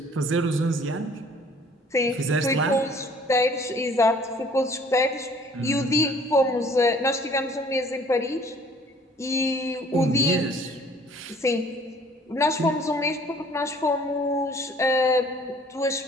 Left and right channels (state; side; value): normal; both; correlation 0.55